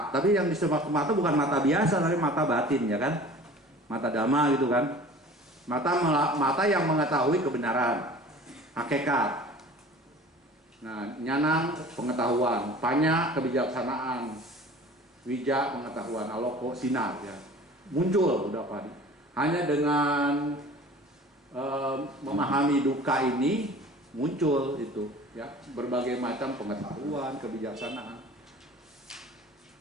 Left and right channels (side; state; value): both; normal; correlation 0.44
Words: tapi yang disebut mata bukan mata biasa, tapi mata batin ya kan, mata dhamma gitu kan, mata yang mengetahui kebenaran, hakikat. Nah nyanang pengetahuan, panya kebijaksanaan, wija pengetahuan, aloko sinar ya, muncul udah padi. Hanya dengan memahami duka ini muncul itu ya, berbagai macam pengetahuan, kebijaksanaan.